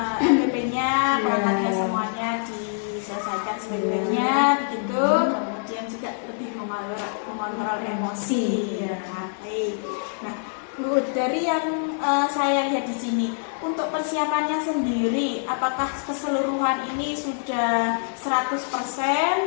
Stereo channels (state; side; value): silent; right; digital silence